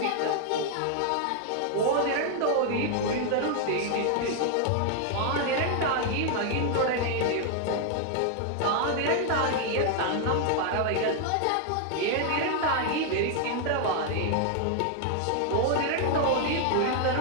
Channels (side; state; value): both; different; correlation 0.00